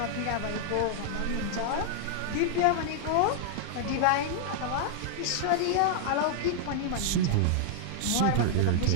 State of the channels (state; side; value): different; both; correlation 0.00